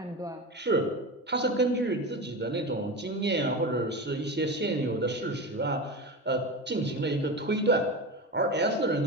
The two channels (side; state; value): both; normal; correlation 0.24